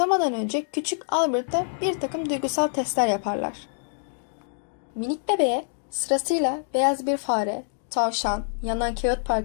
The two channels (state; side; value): silent; right; digital silence